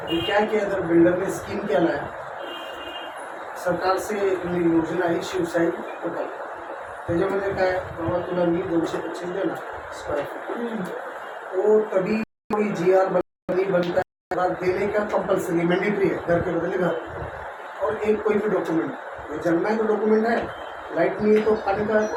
अभी क्या किया, इधर बिल्डर ने स्कीम क्या लाया, सरकार से योजना आहे शिवशाही प्रकल्प. त्याच्यामध्ये काय, बाबा तुला मी 225 देना स्क्वायर फीट. वो तभी कोई GR बनता है, देने का कंपल्सरी मैंडेटरी है, घर के बदले घर. और एक कोई भी डॉक्यूमेंट, जन्म है तो डॉक्यूमेंट है, लाइट नहीं है तो पानी का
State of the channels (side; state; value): both; identical; correlation 1.00